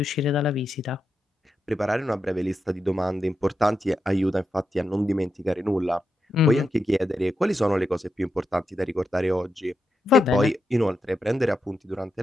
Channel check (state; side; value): normal; both; correlation 0.86